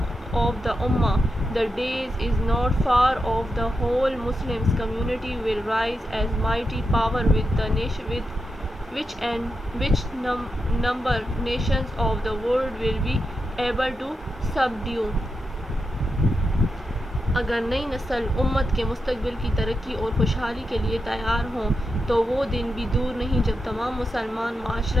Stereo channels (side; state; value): both; normal; correlation 0.87